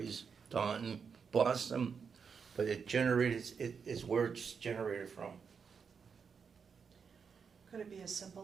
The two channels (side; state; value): left; quieter; 6.1 dB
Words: Taunton, Boston, but it generates, it's where it's generated from. Could it be as